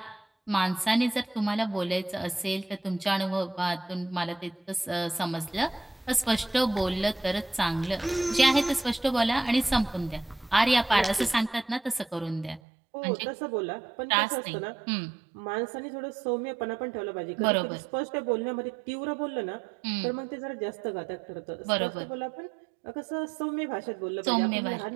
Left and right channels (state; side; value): drops out; left; at 12.6 s